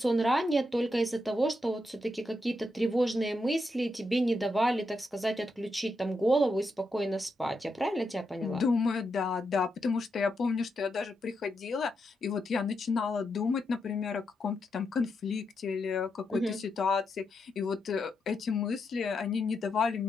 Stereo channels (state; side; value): normal; both; correlation 0.84